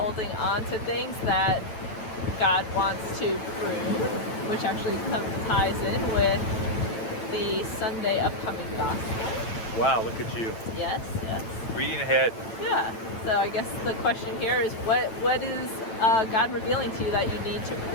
on to things that God wants to prune, which actually ties in with the Sunday upcoming gospel. Wow, look at you. Yes. Reading ahead. Yeah. So I guess the question here is what is God revealing to you that you need to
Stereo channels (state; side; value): late; right; 9.0 ms